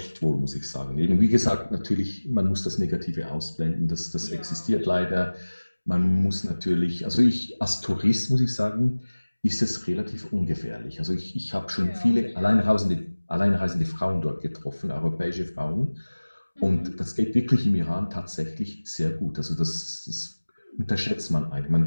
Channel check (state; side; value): inverted; both; correlation -1.00